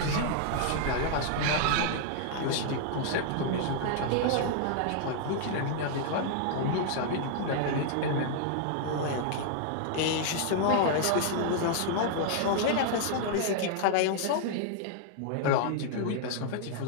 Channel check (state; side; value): different; both; correlation -0.01